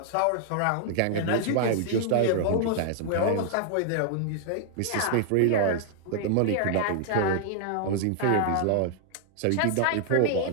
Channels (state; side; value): different; both; correlation -0.01